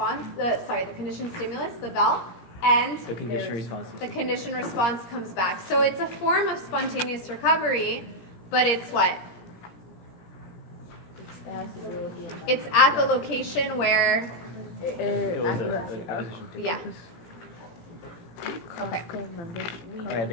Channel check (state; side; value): late; right; 17 ms